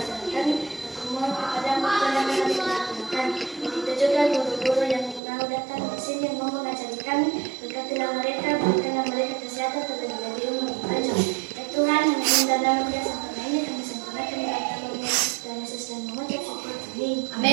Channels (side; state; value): left; drops out; at 5.2 s